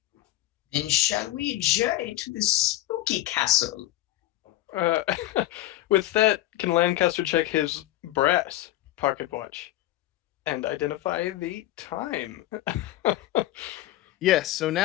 Then shall we journey to the spooky castle? With that, can Lancaster check his brass pocket watch and identify the time? Yes, so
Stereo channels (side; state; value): right; quieter; 15.3 dB